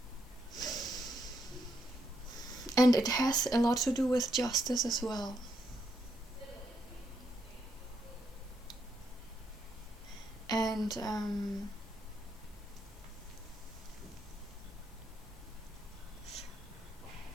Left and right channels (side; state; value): both; normal; correlation 0.77